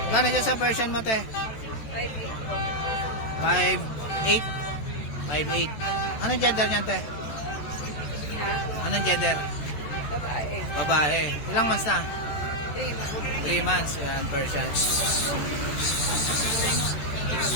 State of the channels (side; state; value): right; late; 14 ms